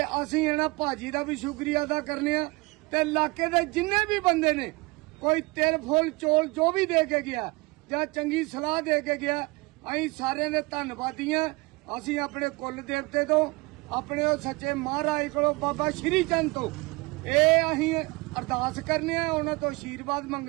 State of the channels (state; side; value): quieter; left; 24.9 dB